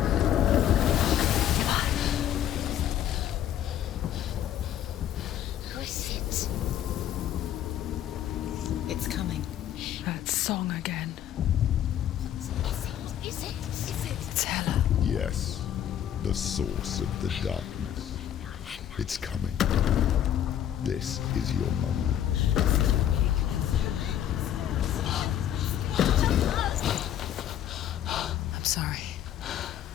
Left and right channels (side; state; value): right; quieter; 10.7 dB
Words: Who is it? It's coming. That song again. Is it? It's Hella. Yes, the source of the darkness. It's coming. This is your moment. I'm sorry.